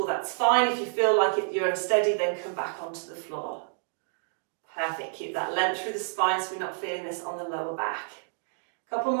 that's fine. If you feel like you're unsteady, then come back onto the floor. Perfect. Keep that length through the spine so we're not feeling this on the lower back. Couple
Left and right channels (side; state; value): left; silent; digital silence